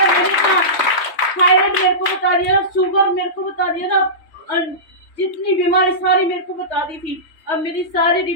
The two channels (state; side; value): late; right; 3.3 ms